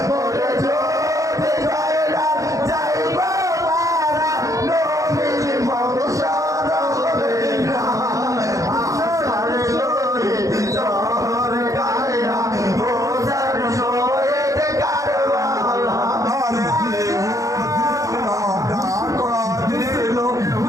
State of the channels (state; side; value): late; left; 0.16 ms